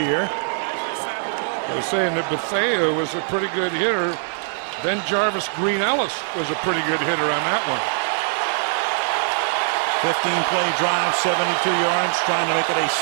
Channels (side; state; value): left; silent; digital silence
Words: I was saying that Bethea was a pretty good hitter. Then Jarvis Green Ellis was a pretty good hitter on that one. 15-play drive, 72 yards, trying to make it a